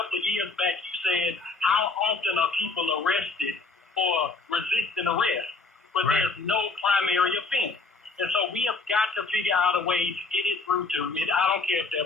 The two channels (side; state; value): right; quieter; 4.0 dB